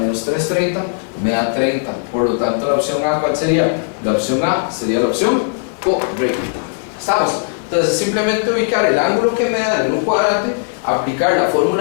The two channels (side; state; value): right; silent; 56 dB below the other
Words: 330 me da 30. Por lo tanto, la opción A, ¿cuál sería? La opción A sería la opción correcta. ¿Estamos? Entonces simplemente ubicar el ángulo que me dan en un cuadrante, aplicar la